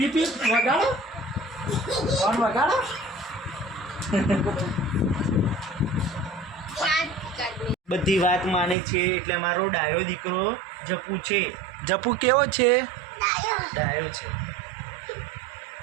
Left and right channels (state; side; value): drops out; left; at 8.8 s